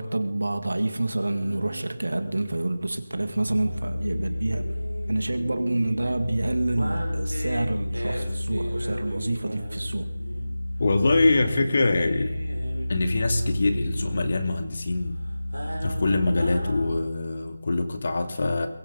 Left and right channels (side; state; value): both; inverted; correlation -0.95